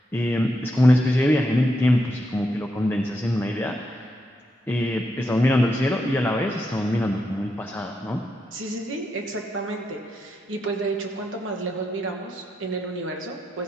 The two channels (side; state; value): both; normal; correlation 0.83